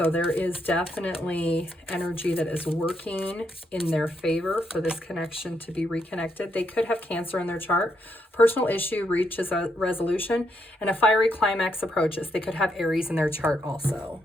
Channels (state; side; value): normal; both; correlation 0.78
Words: there is definitely energy that is working in their favor for this connection to be reconnected. They could have Cancer in their chart. Personal issue reaches a resolution and a fiery climax approaches. They could have Aries in their chart also.